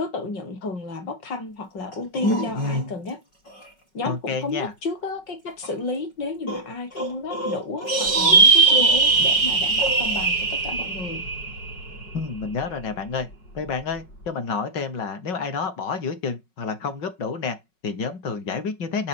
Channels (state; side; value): late; right; 5.4 ms